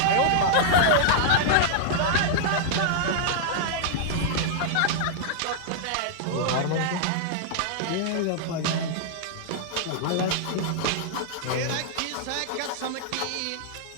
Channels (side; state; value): both; different; correlation -0.01